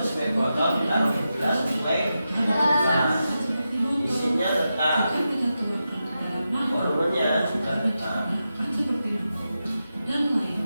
sesuai botol, ditaruh di gelas sesuai gelas. Isinya tetap, volumenya juga tetap.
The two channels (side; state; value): both; inverted; correlation -0.90